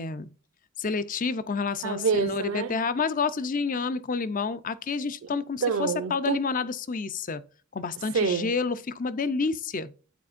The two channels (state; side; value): normal; both; correlation 0.10